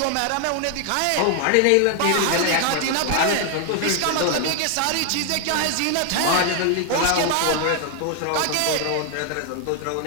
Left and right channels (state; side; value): different; both; correlation 0.00